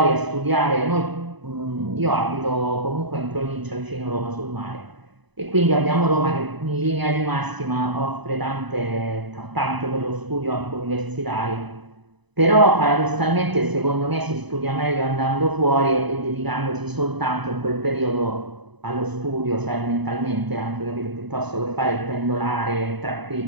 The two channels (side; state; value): left; late; 1.0 ms